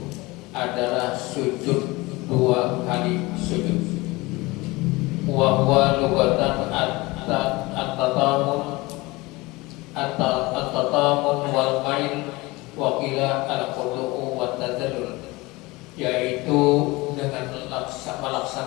adalah sujud dua kali sujud. Wa huwa lugatan at-tatamun wal mail wa qila al-qudu'u wa tadallul, yaitu dengan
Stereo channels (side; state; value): right; quieter; 22.3 dB